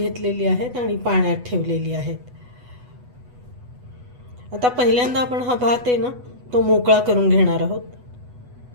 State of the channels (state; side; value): late; left; 8.1 ms